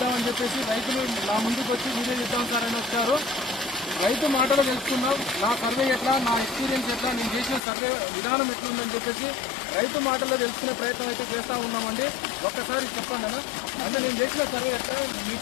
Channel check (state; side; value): drops out; right; at 7.6 s